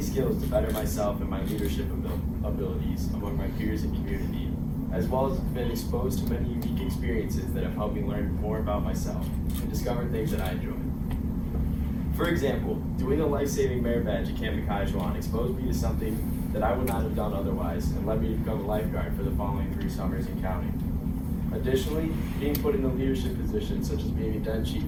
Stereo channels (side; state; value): both; identical; correlation 1.00